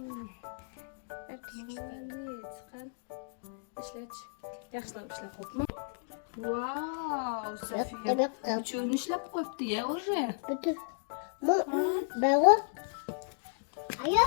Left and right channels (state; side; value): silent; right; digital silence